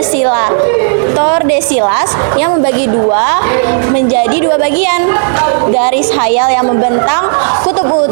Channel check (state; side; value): silent; left; digital silence